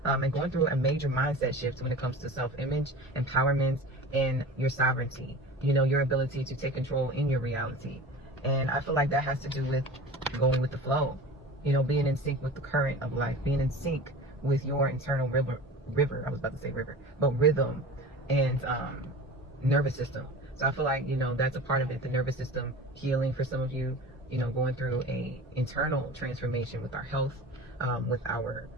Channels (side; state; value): both; normal; correlation 0.36